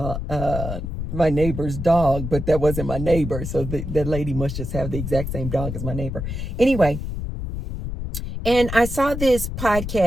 my neighbor's dog, but that wasn't my neighbor. So the lady must just have the exact same dog as my neighbor. Anyway, and I saw this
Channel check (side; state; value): left; noise; rumble, 5 dB below the sound